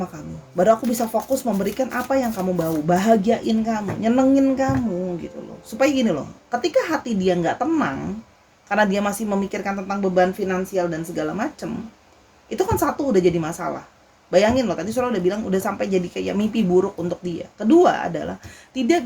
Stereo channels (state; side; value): identical; both; correlation 1.00